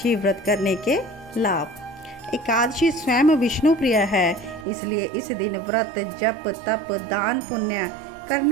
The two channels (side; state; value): left; drops out; at 4.7 s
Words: व्रत करने के लाभ। एकादशी स्वयं विष्णु प्रिय है, इसलिए इस दिन व्रत, जप, तप, दान, पुण्य